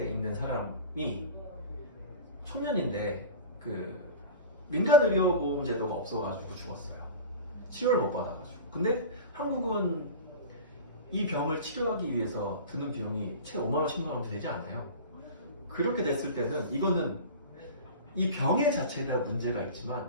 있는 사람이 청년인데 그 민간 의료보험 제도가 없어가지고 죽었어요. 치료를 못 받아가지고. 근데 한국은 이 병을 치료하기 위해서 드는 비용이 최 5만 원, 10만 원 되지 않아요. 그렇게 됐을 때는 이거는 이 병의 자체에 문제가 있지만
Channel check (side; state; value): both; inverted; correlation -0.33